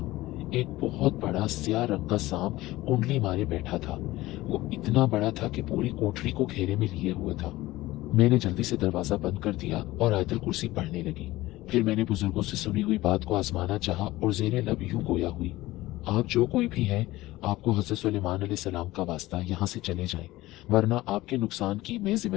एक बहुत बड़ा स्याह रंग का सांप कुंडली मारे बैठा था। वो इतना बड़ा था कि पूरी कोठरी को घेरे में लिए हुआ था। मैंने जल्दी से दरवाजा बंद कर दिया और आयतुल कुर्सी पढ़ने लगी। फिर मैंने बुजुर्गों से सुनी हुई बात को आजमाना चाहा और जेरे लब यूं गोया हुई, आप जो कोई भी हैं, आपको हज़रत सुलेमान अलैहिस्सलाम का वास्ता यहाँ से चले जाएं, वरना आपके नुकसान की मैं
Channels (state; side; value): quieter; right; 17.9 dB